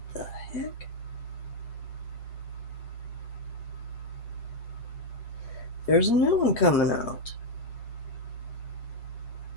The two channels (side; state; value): right; late; 8.4 ms